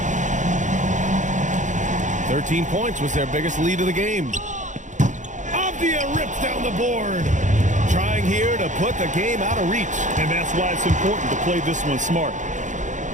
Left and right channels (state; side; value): late; left; 0.36 ms